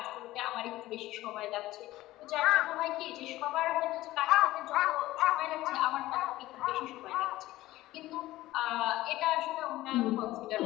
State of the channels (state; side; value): quieter; right; 16.7 dB